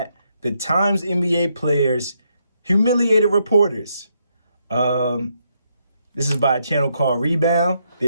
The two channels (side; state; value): both; inverted; correlation -0.78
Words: the Times NBA players humiliated reporters. This is by a channel called Rebound.